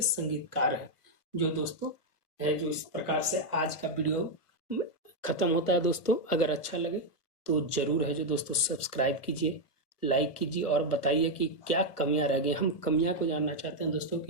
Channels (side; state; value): right; late; 1.8 ms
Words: संगीतकार हैं। जो दोस्तों है जो इस प्रकार से आज का वीडियो खत्म होता है दोस्तों। अगर अच्छा लगे तो जरूर है जो दोस्तों सब्सक्राइब कीजिए, लाइक कीजिए और बताइए कि क्या कमियां रह गई। हम कमियां को जानना चाहते हैं दोस्तों,